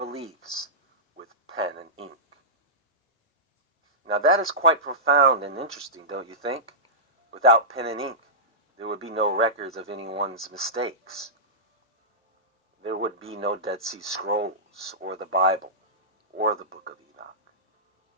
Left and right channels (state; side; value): normal; both; correlation -0.17